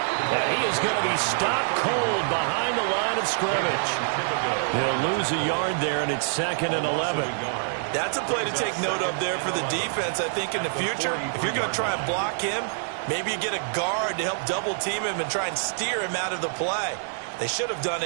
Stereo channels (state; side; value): silent; left; digital silence